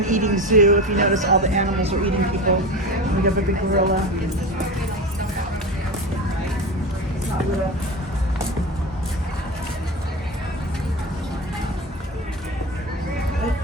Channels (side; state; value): both; normal; correlation 0.26